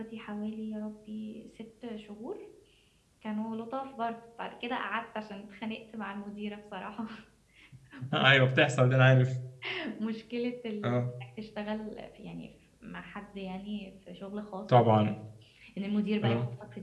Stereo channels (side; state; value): both; identical; correlation 1.00